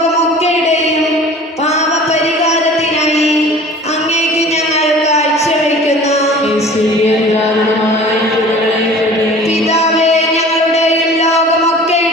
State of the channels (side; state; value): both; normal; correlation 0.44